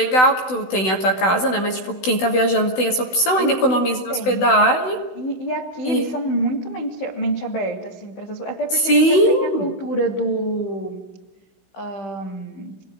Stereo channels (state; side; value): late; right; 16 ms